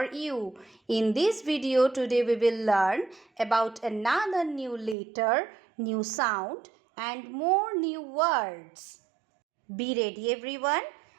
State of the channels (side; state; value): left; drops out; at 5.0 s